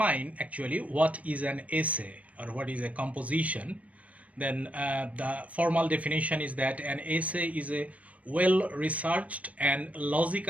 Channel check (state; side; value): late; left; 0.067 ms